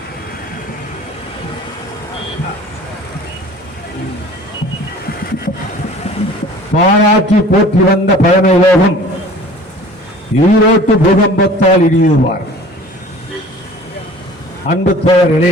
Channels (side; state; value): both; normal; correlation 0.46